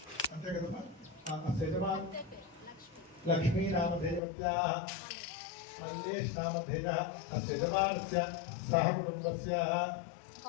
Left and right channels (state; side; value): drops out; right; at 4.2 s